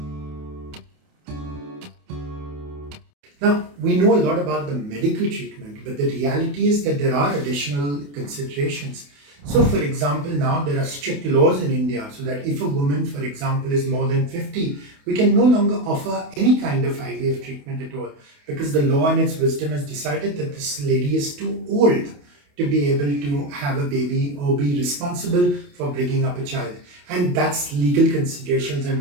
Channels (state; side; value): late; left; 28 ms